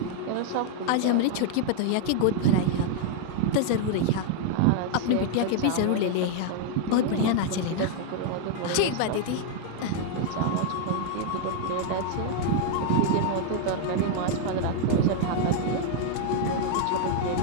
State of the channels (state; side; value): different; both; correlation 0.00